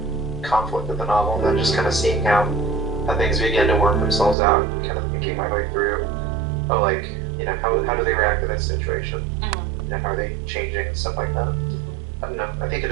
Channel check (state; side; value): drops out; left; at 4.4 s